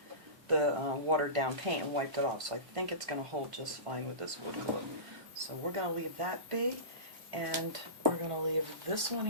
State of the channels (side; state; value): left; late; 1.5 ms